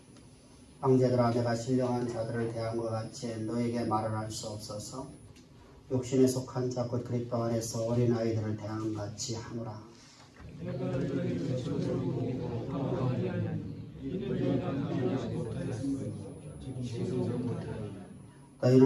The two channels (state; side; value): identical; both; correlation 1.00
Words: 형제들아, 내가 신령한 자들을 대한 것 같이 너에게 말을 할 수 없어서 육신에 속한 자 곧 그리스도 안에서 어린아이들을 대한 것 같이 하노라.